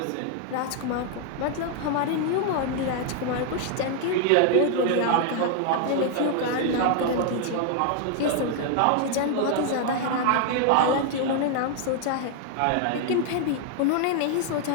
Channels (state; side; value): different; both; correlation 0.00